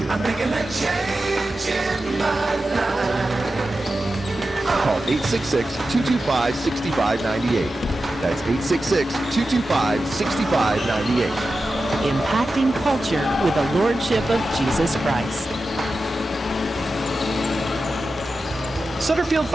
I'm making a change in my life. Call 866-225-6598. That's 866-225-6598. Impacting culture with the Lordship of Jesus Christ. Sutterfield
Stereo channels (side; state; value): both; normal; correlation 0.92